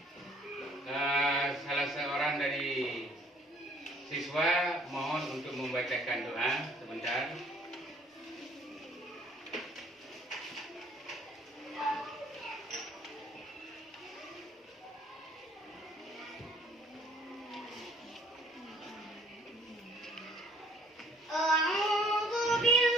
Salah seorang dari siswa mohon untuk membacakan doa sebentar. A'udzu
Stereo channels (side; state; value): both; normal; correlation 0.59